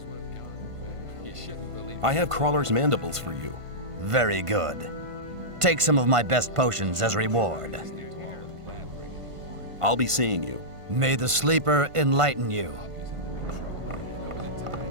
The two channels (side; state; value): left; late; 1.5 ms